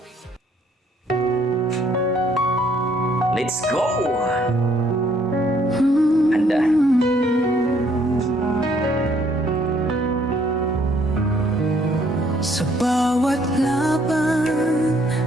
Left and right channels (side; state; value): both; normal; correlation 0.65